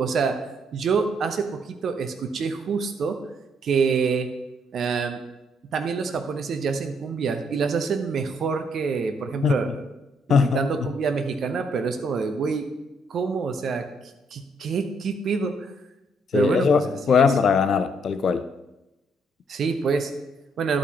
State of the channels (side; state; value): both; normal; correlation 0.70